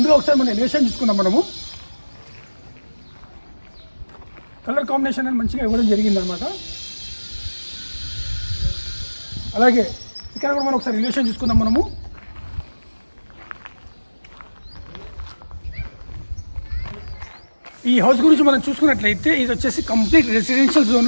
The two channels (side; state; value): both; inverted; correlation -1.00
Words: ఒకసారి మనం ఎలివేషన్ చూసుకున్నాం. మనము కలర్ కాంబినేషన్ అని మంచిగా ఇవ్వడం జరిగిందనమాట. అలాగే ఇక్కడ కూడా మనం ఒకసారి ఎలివేషన్ చూసుకుందాం. మనము ఈ హౌస్ గురించి మనం చూసుకున్నట్లయితే ఇది వచ్చేసి కంప్లీట్ రెసిడెన్షియల్